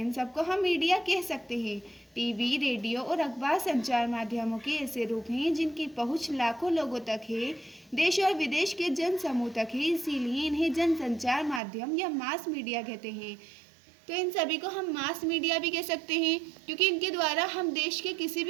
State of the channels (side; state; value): left; drops out; at 11.6 s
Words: इन सबको हम मीडिया कह सकते हैं। टीवी, रेडियो और अखबार संचार माध्यमों के ऐसे रूप हैं जिनकी पहुंच लाखों लोगों तक है, देश और विदेश के जन समूह तक है, इसीलिए इन्हें जनसंचार माध्यम या मास मीडिया कहते हैं। तो इन सभी को हम मास मीडिया भी कह सकते हैं, क्योंकि इनके द्वारा हम देश के किसी